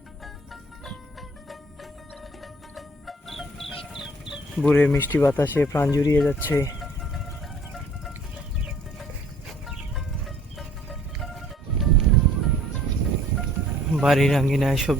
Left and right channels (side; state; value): both; normal; correlation 0.56